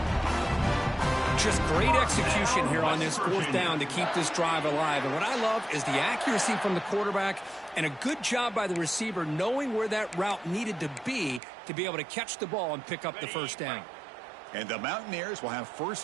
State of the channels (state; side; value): drops out; left; at 11.4 s